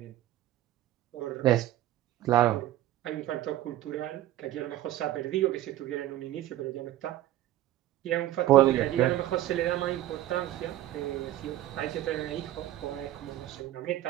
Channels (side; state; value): left; quieter; 14.1 dB